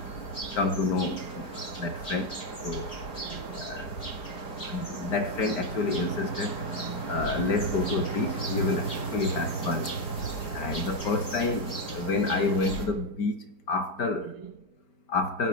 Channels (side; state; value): right; late; 4.8 ms